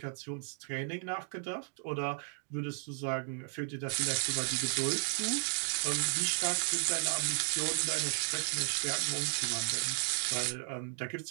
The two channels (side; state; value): left; silent; 55 dB below the other